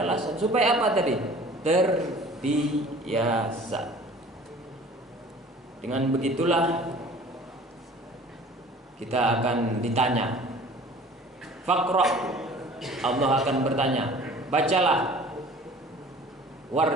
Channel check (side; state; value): both; normal; correlation 0.47